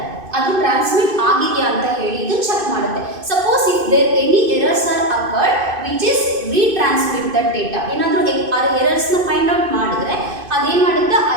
ಅದು ಟ್ರಾನ್ಸ್ಮಿಟ್ ಆಗಿದೆಯಾ ಅಂತ ಹೇಳಿ ಇದು ಚೆಕ್ ಮಾಡುತ್ತೆ. Suppose if there any errors are occurred which is retransmit that data. ಏನಾದರೂ ಎರರ್ಸ್ನ ಫೈಂಡ್ ಔಟ್ ಮಾಡಿದ್ರೆ ಅದೇನು ಮಾಡುತ್ತೆ, ಆ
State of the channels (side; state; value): left; late; 2.5 ms